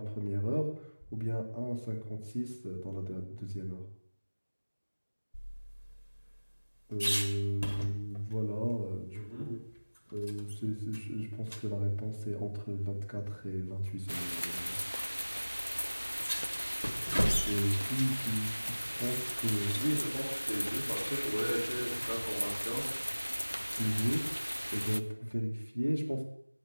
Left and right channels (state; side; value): inverted; both; correlation -1.00